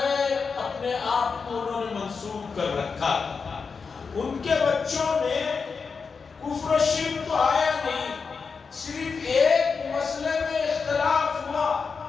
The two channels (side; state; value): right; quieter; 5.2 dB